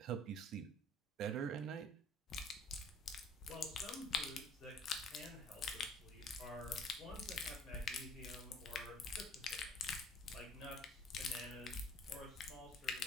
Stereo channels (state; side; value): normal; both; correlation 0.54